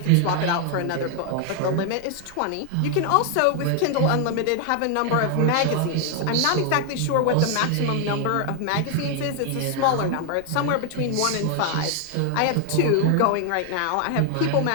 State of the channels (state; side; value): different; both; correlation 0.00